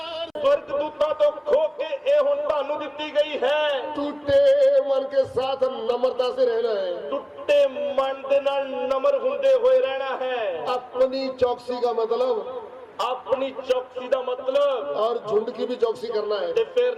स्वर्गदूतां तो खो के ए हुण तुहानू दित्ती गई है। टूटे मन के साथ नम्रता से रहना है, टुट्टे मन दे नाल नम्र हुंदे होए रहना है। अपनी चौकसी का मतलब अपनी चौकसी दा मतलब और झुंड की भी चौकसी करना है। ते फिर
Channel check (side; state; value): both; identical; correlation 1.00